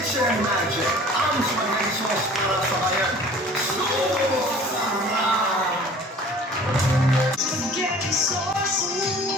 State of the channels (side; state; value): both; normal; correlation 0.47